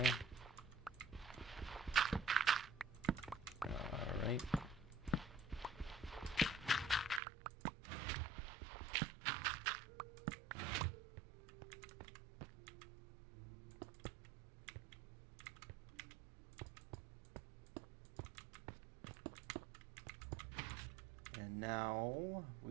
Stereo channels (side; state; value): left; drops out; at 7.2 s